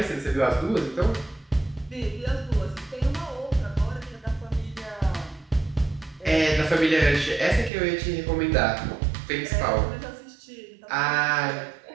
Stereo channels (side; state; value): left; drops out; at 7.7 s